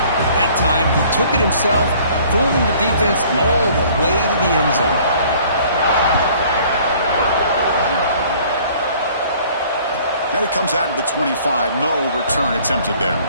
That time, he took it himself, fooling the defense all the way to the end zone. And it comes out of the 25. No return attempted there.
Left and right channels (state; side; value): inverted; both; correlation -0.55